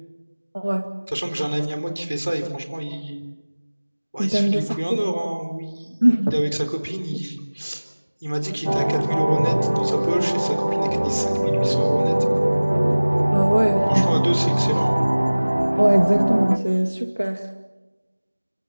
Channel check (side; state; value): both; inverted; correlation -1.00